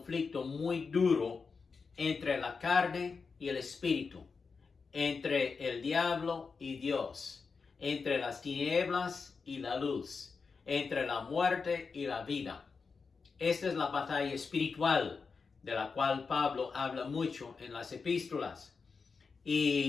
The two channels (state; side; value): quieter; right; 5.0 dB